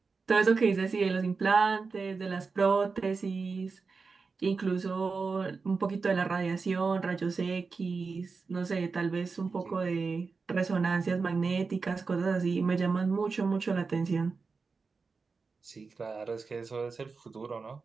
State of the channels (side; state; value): left; quieter; 4.6 dB